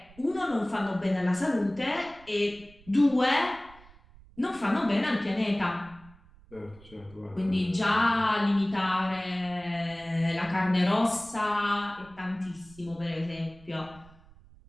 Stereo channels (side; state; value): right; noise; rumble, 24 dB below the sound